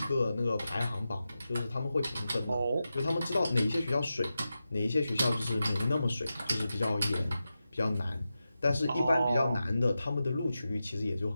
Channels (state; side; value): inverted; both; correlation -0.92